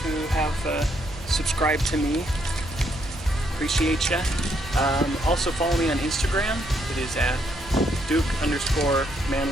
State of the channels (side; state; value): both; normal; correlation 0.73